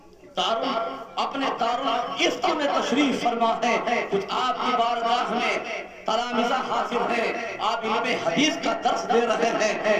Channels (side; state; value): both; identical; correlation 1.00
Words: اپنے دارالفتہ میں تشریف فرما ہے۔ کچھ آپ کی بارگاہ میں تلامذہ حاضر ہیں، آپ علم حدیث کا درس دے رہے ہیں۔